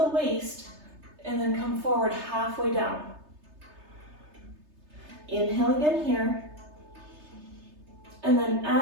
waist, and then come forward halfway down. Inhale again here. And then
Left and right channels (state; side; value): late; left; 3.3 ms